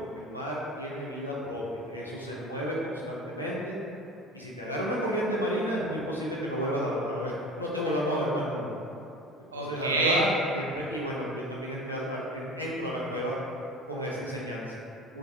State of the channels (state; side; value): normal; both; correlation 0.35